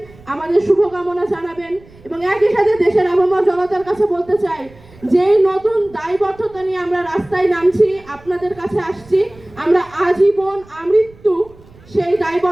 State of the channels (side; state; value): right; noise; rumble, 25 dB below the sound